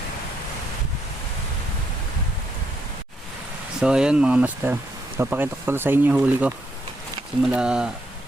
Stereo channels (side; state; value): both; normal; correlation 0.76